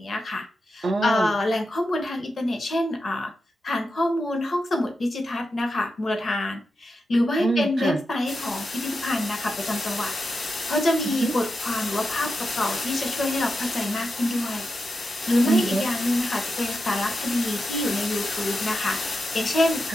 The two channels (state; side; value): normal; both; correlation 0.88